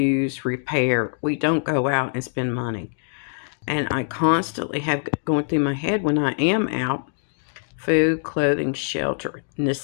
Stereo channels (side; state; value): right; silent; digital silence